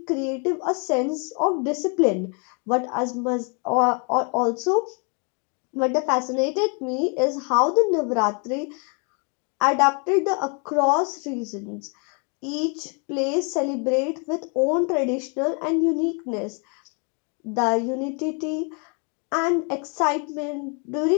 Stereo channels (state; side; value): quieter; right; 36.9 dB